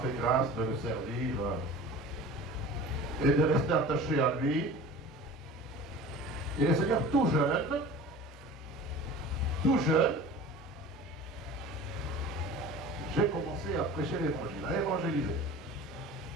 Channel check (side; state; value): both; normal; correlation 0.39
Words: grâce de le servir et de rester attaché à lui. Et le Seigneur tout jeune, j'ai commencé à prêcher l'évangile, à évangéliser.